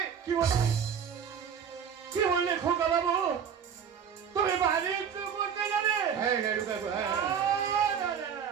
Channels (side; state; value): left; quieter; 7.7 dB